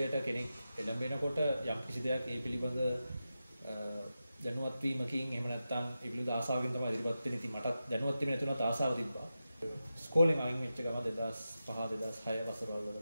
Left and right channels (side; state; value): both; inverted; correlation -0.91